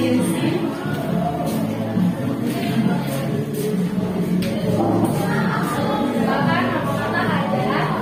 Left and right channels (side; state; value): both; identical; correlation 1.00